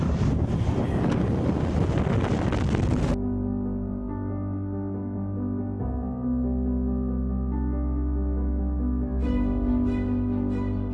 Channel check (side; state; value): both; identical; correlation 1.00